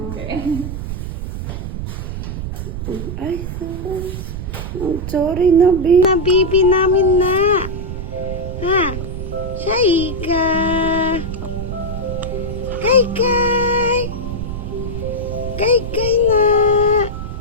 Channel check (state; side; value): noise; right; rumble, 6 dB below the sound